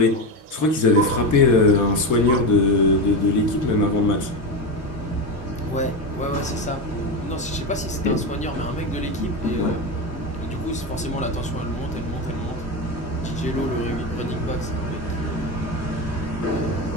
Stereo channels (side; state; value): both; normal; correlation 0.17